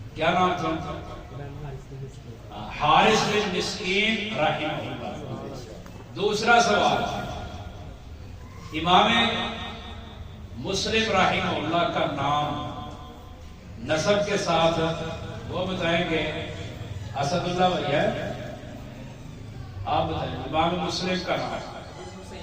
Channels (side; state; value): both; identical; correlation 1.00